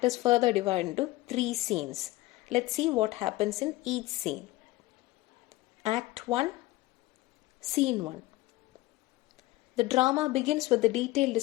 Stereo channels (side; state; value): right; quieter; 18.4 dB